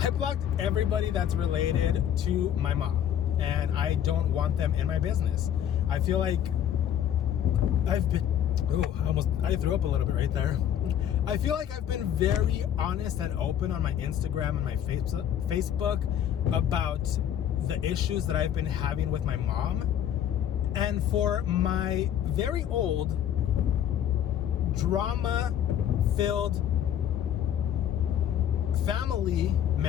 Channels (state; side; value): quieter; right; 10.0 dB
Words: blocked everybody that's related to my mom, and I don't want them in my business. I feel like I've been, I threw up a little bit right there. I feel like I've been very honest and open on my Instagram and my Facebook about the issues that I've been having with my mom. And for my very old, drama-filled family